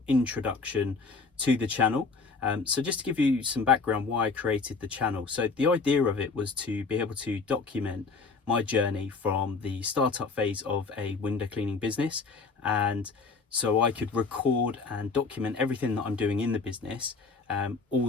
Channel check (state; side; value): quieter; right; 4.4 dB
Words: introduction to the channel. So just to give you some background why I created the channel. So the idea of it was to be able to document my journey from the startup phase of a window cleaning business. And so I could record and document everything that I'm doing in the business all